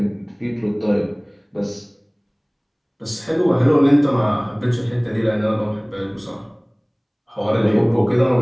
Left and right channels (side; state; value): both; identical; correlation 1.00